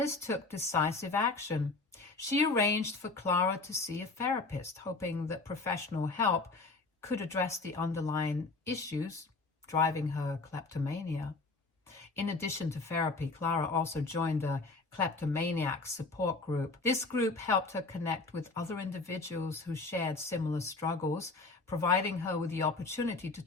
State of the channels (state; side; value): quieter; right; 3.6 dB